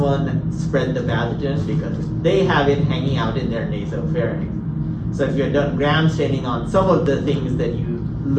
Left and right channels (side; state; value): both; identical; correlation 1.00